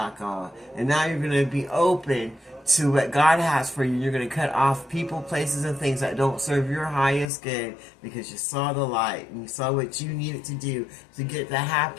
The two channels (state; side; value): drops out; right; at 7.3 s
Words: And now you're going to be open to what God has for you. You're going to cut off people, places, and things that don't serve your highest good because you saw the light and you saw what you needed to do to get the